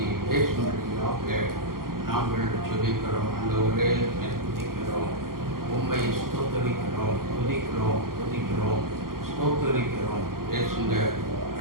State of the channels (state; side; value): late; left; 0.92 ms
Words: பேசும்படியாக நாங்கள் ஜெபிக்கிறோம். ஆண்டவரே, துதிக்கிறோம், உம்மை ஸ்தோத்தரிக்கிறோம், துதிக்கிறோம், ஸ்தோத்தரிக்கிறோம். பேசுங்க,